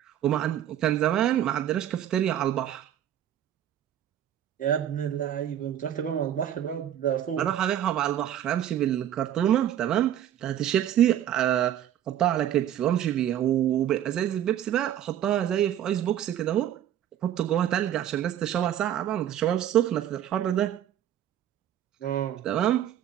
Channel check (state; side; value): quieter; left; 11.0 dB